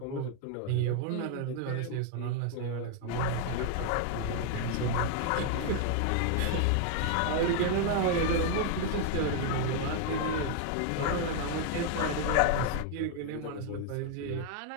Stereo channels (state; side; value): different; both; correlation 0.00